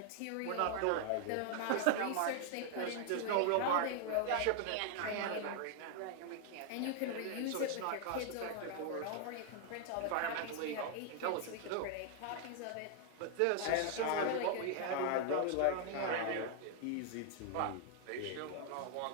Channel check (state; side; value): different; both; correlation 0.00